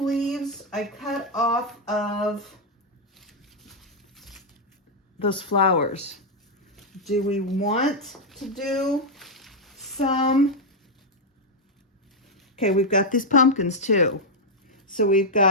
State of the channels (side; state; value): both; normal; correlation -0.02